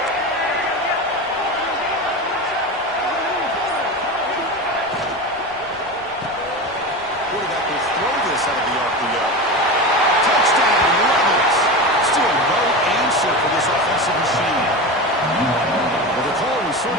Quarterback will throw this out of the RPO. Touchdown, Rebels. Still no answer for this offensive machine. Well, the call was sort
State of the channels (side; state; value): left; noise; rumble, 27 dB below the sound